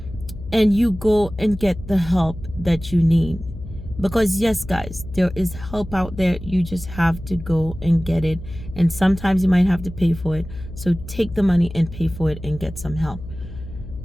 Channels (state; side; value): noise; left; hum, 13 dB below the sound